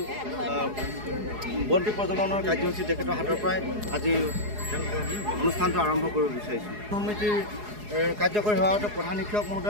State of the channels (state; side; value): late; left; 4.8 ms